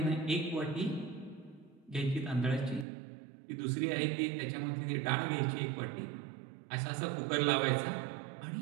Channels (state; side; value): drops out; left; at 2.9 s